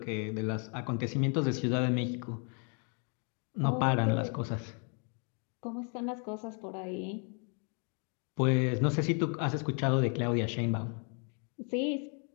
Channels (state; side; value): quieter; right; 39.1 dB